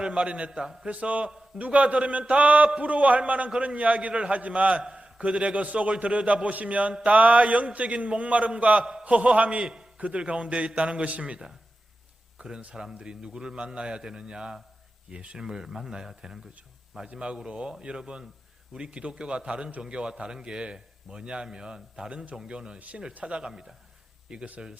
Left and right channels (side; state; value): both; normal; correlation 0.93